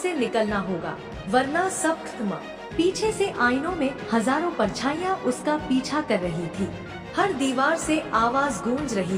निकलना होगा, वरना सब खत्म। पीछे से आईनों में हजारों परछाइयाँ उसका पीछा कर रही थी। हर दीवार से आवाज गूंज रही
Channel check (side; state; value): both; identical; correlation 1.00